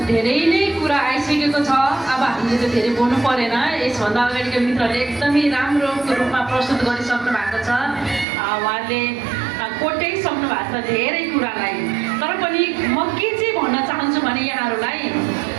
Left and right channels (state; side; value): drops out; left; at 8.2 s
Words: नै कुरा आइसकेको छ। अब हामीले त धेरै बोल्नु परेन। यसभन्दा अगाडिको मित्रले एकदमै राम्रो रूपमा प्रस्तुत गरिसक्नु भएको छ। उहाँले कोट्याइसक्नु भएको छ धेरै कुरालाई। तर पनि म के चाहिँ भन्न चाहन्छु भने यहाँहरूलाई